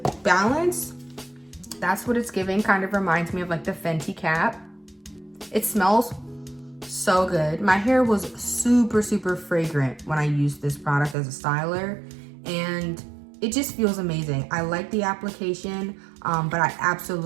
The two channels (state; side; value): drops out; left; at 11.2 s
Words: balance. That's what it's giving. Kind of reminds me of like the Fenty cap. It smells so good. My hair was super fragrant when I used this product as a styler, and it just feels amazing. I like the application, but I